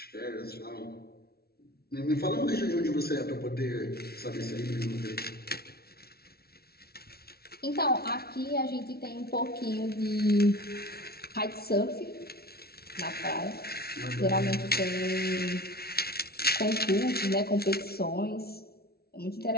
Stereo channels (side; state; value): right; late; 0.45 ms